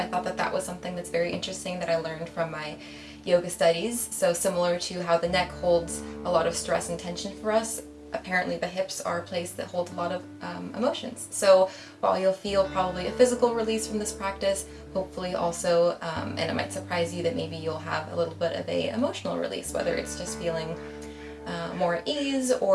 thought that that was something that's very interesting that I learned from my yoga studies. So similar to how the neck holds a lot of stress and tension for us, apparently the hips are a place that holds a lot of emotions. So while you'll feel probably a physical release from this practice, hopefully also, and it might surprise you that maybe you'll have a little bit of a emotional release, whether it's just feeling more at ease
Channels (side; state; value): both; identical; correlation 1.00